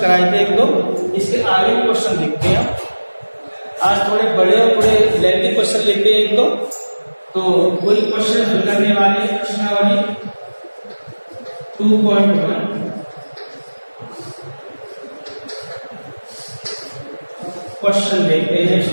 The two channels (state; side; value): inverted; both; correlation -1.00